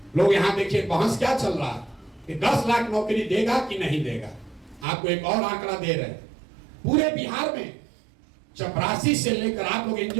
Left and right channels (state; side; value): drops out; left; at 4.9 s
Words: लोग यहाँ देखिए बहस क्या चल रहा है कि 10 लाख नौकरी देगा कि नहीं देगा। आपको एक और आंकड़ा दे रहे हैं, पूरे बिहार में 84 से लेकर, आप लोग